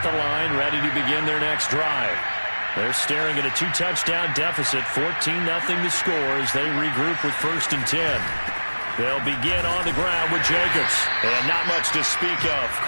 the line, ready to begin their next drive. They're staring at a 2-touchdown deficit, 14-0 to score as they regroup with 1st and 10. They'll begin on the ground with Jacobs. And not much to speak of.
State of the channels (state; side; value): inverted; both; correlation -1.00